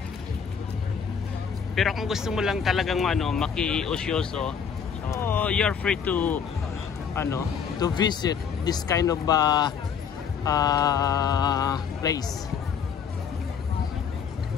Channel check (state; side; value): quieter; right; 6.9 dB